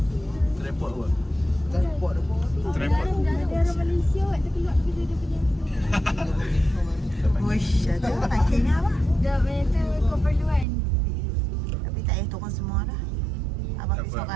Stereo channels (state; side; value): drops out; left; at 10.7 s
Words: kot. Tripod apa? Daerah Malaysia kot. Dia keluar pergi dia punya. Wush, ada parkingnya apa? Dah banyak tu keperluan. Tapi tak payah turun semua dah. Abang pergi